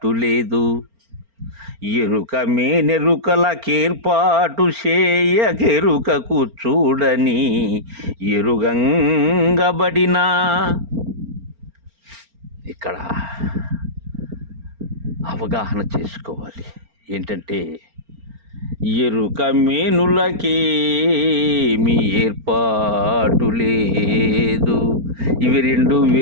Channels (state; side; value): late; left; 4.4 ms